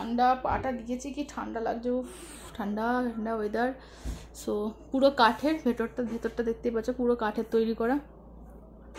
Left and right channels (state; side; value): identical; both; correlation 1.00